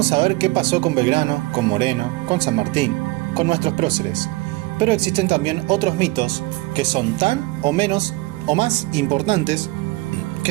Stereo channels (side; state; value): left; quieter; 21.1 dB